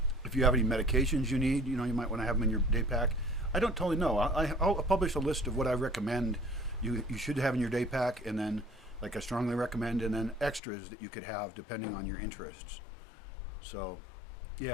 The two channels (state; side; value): drops out; right; at 10.6 s